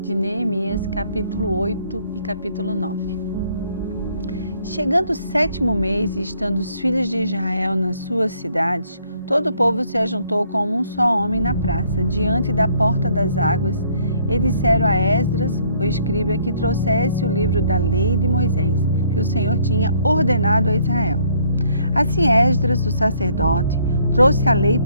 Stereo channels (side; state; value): both; inverted; correlation -0.65